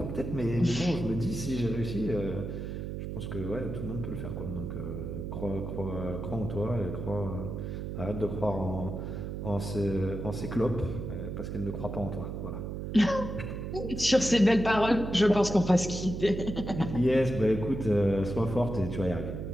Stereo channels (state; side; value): noise; right; hum, 5 dB below the sound